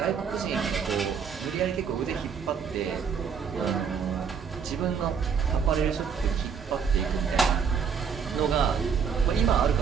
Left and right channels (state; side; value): quieter; left; 6.6 dB